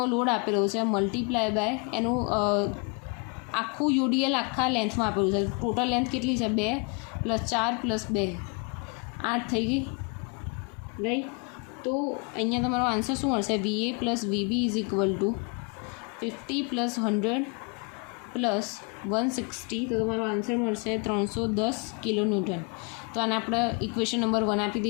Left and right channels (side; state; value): right; quieter; 34.2 dB